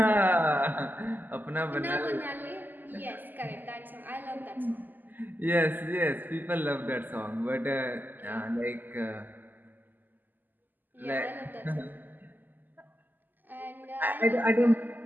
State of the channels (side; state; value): left; late; 0.087 ms